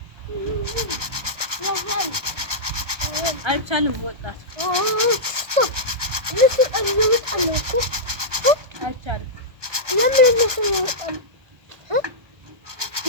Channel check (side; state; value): left; late; 1.2 ms